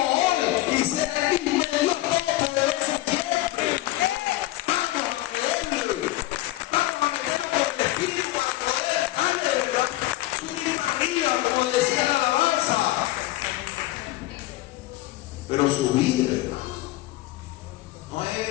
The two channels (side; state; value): right; quieter; 17.4 dB